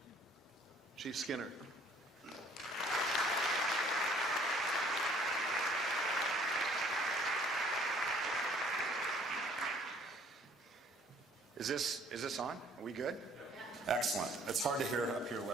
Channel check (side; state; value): both; normal; correlation 0.58